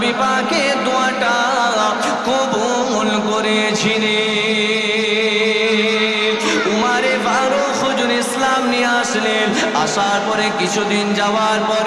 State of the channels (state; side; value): identical; both; correlation 1.00